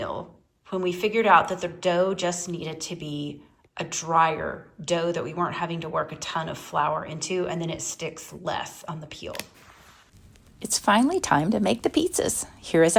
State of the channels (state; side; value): identical; both; correlation 1.00